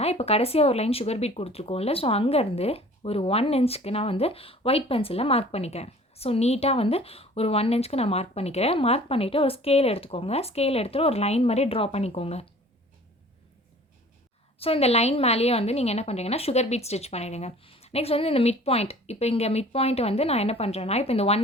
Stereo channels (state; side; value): normal; both; correlation 0.48